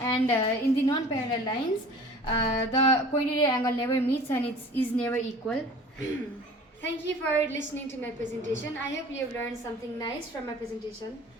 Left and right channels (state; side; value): normal; both; correlation 0.44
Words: in the non-parallel lines, the cointerior angle never meets and it is never equal. Thank you for listening to my presentation. I hope you have learned something nice from my presentation.